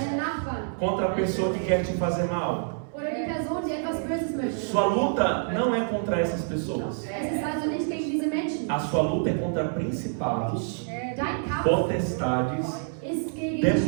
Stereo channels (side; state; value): left; silent; 60 dB below the other